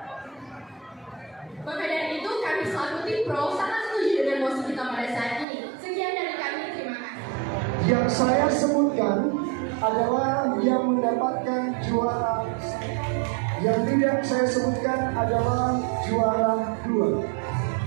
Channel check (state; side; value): drops out; left; at 5.5 s